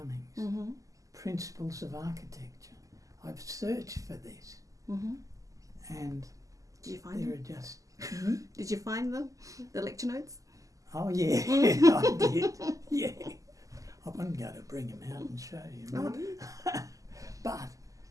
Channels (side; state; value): left; late; 0.16 ms